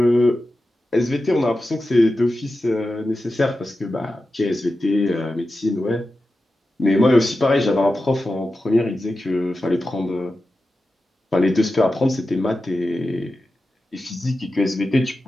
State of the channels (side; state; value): both; normal; correlation 0.92